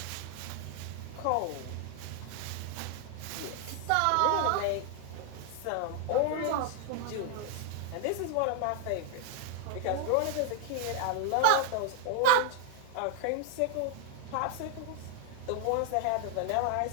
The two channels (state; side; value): different; both; correlation 0.00